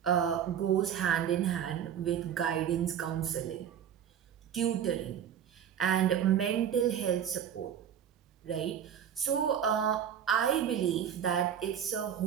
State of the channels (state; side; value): quieter; left; 9.0 dB